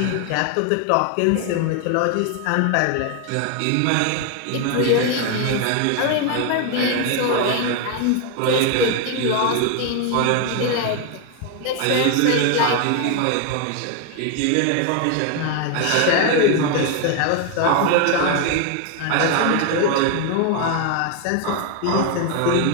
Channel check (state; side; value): different; both; correlation 0.01